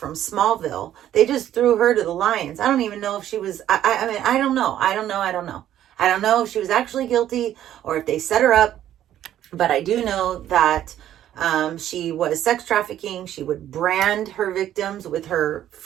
Smallville, they just threw her to the lions. I don't even know if she was, I mean, I don't know. I don't know if she was actually guilty or if they set her up, but I do know that she was sex trafficking. She would brand her victims with her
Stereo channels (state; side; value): quieter; left; 11.7 dB